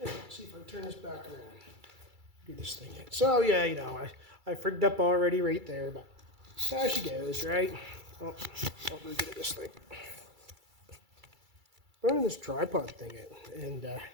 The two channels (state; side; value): late; left; 2.3 ms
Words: let's see if I can turn this back around. Do this thing in. So yeah, you know, I frigged up already right there, but there she goes, right? Oh, I'll really get at this thing. Running this tripod thing out and